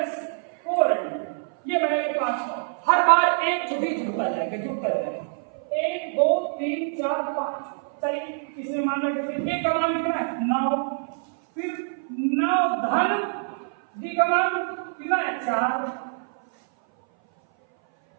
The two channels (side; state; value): left; silent; 58 dB below the other